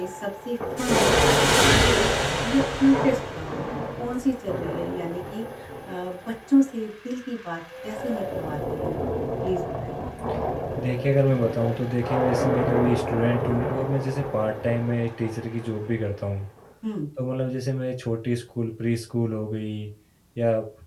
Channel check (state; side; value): identical; both; correlation 1.00